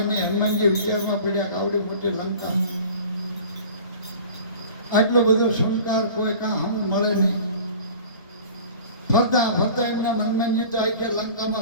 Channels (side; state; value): both; inverted; correlation -0.42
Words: નહીં હનુમાનજી વિચારમાં પડ્યા કે આવડી મોટી લંકા આટલો બધો શણગાર કોઈ કાં હમ મળે નહીં ફરતા એમના હનુમાનજી તો આવી ગયા